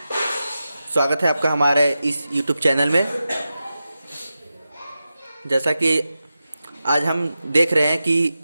स्वागत है आपका हमारे इस यूट्यूब चैनल में। जैसा कि आज हम देख रहे हैं कि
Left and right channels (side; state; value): both; inverted; correlation -0.92